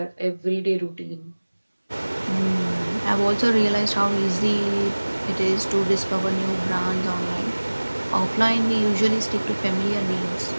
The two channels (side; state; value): both; inverted; correlation -1.00